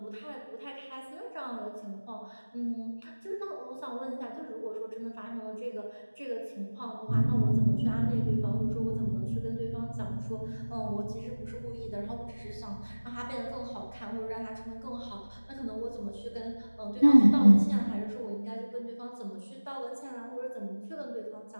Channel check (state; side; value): inverted; both; correlation -1.00